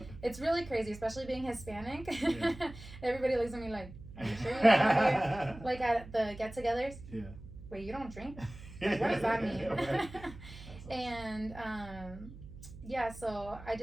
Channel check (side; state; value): right; noise; hum, 15 dB below the sound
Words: It's really crazy, especially being Hispanic. Yeah. Everybody looks at me like, are you sure you're not like at the get-togethers? Yeah. Wait, you don't drink? Like, what does that mean? Right. Awesome. And so I